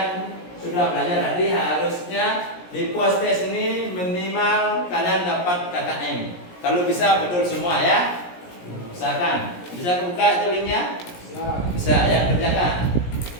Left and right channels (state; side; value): late; right; 17 ms